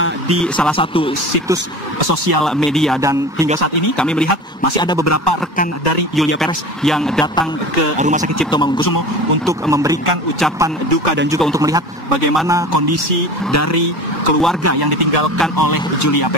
di salah satu situs sosial media. Dan hingga saat ini kami melihat masih ada beberapa rekan dari Julia Perez yang datang ke Rumah Sakit Cipto Mangunkusumo untuk memberikan ucapan duka dan juga untuk melihat bagaimana kondisi dari keluarga yang ditinggalkan oleh Julia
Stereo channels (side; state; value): both; normal; correlation 0.35